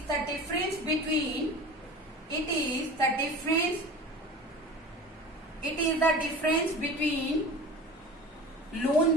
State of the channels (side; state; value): both; normal; correlation 0.36